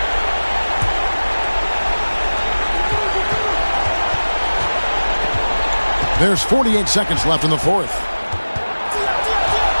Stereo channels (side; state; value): both; inverted; correlation -1.00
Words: There's 48 seconds left in the fourth.